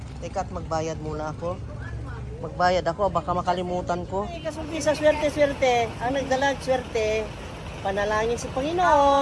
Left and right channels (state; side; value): identical; both; correlation 1.00